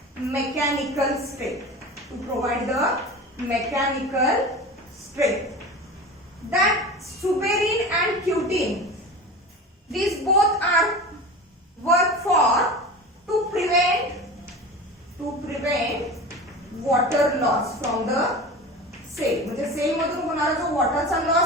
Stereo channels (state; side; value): normal; both; correlation 0.32